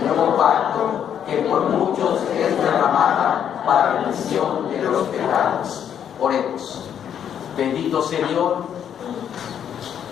nuevo pacto, que por muchos es derramada para remisión de los pecados. Oremos. Bendito Señor.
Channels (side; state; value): right; quieter; 9.0 dB